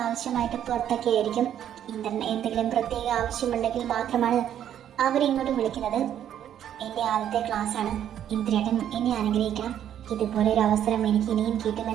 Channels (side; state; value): left; quieter; 10.2 dB